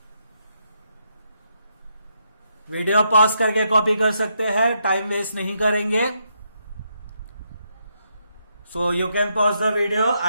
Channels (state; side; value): inverted; both; correlation -0.79